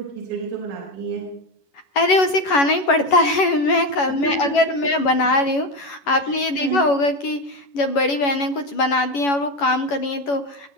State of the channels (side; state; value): right; late; 11 ms